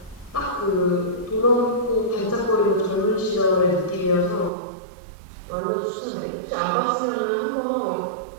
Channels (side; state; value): left; drops out; at 4.5 s